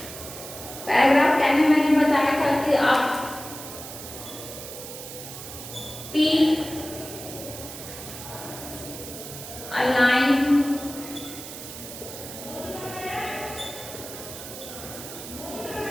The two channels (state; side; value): noise; right; hiss, 11 dB below the sound